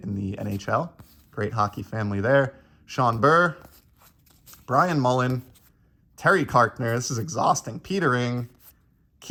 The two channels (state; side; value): identical; both; correlation 1.00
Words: the NHL. Great hockey family there. Sean Burr, Brian Mullen, Terry Karkner, this is exhausting, Peter Ing,